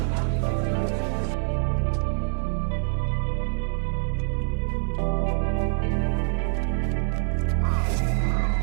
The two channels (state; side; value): silent; left; 57 dB below the other